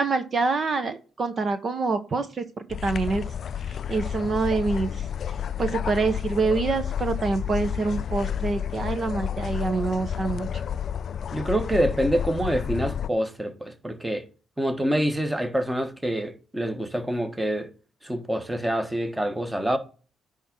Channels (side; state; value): both; normal; correlation 0.82